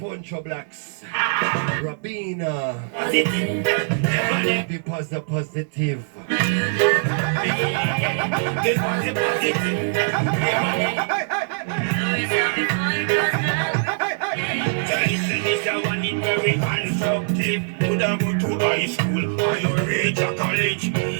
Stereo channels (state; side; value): silent; left; digital silence